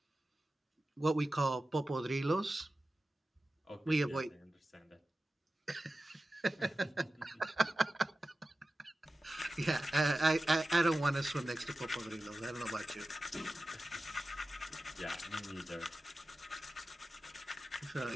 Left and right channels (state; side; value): normal; both; correlation 0.94